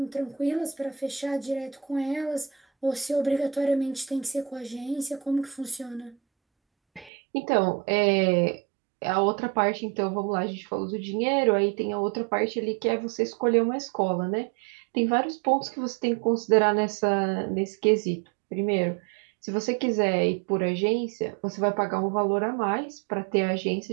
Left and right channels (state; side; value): drops out; left; at 7.1 s